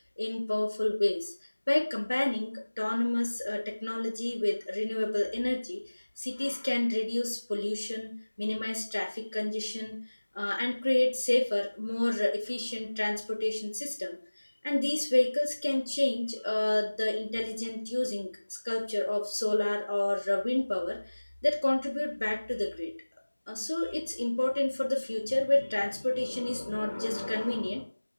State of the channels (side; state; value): both; inverted; correlation -1.00